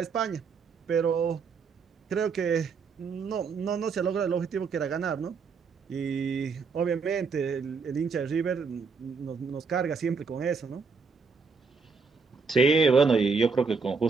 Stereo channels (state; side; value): quieter; left; 5.1 dB